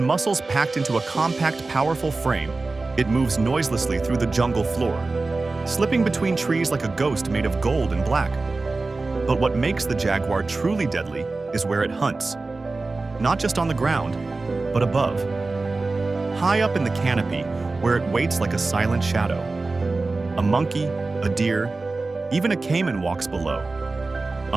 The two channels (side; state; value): left; quieter; 3.5 dB